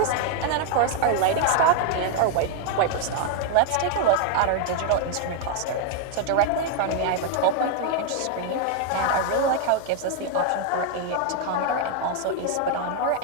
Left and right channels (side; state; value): both; different; correlation 0.01